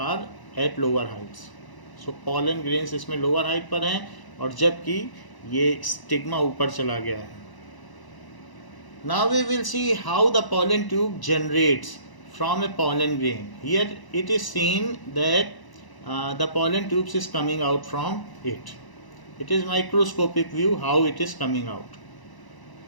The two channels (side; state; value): right; late; 1.0 ms